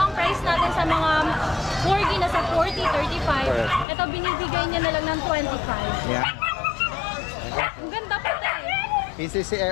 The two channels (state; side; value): drops out; right; at 3.9 s